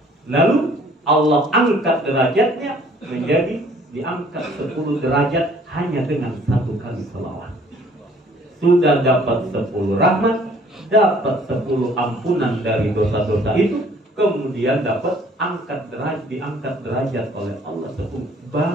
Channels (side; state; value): both; normal; correlation 0.57